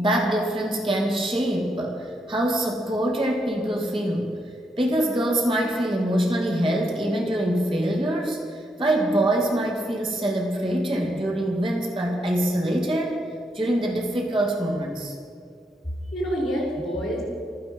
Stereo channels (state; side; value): normal; both; correlation 0.79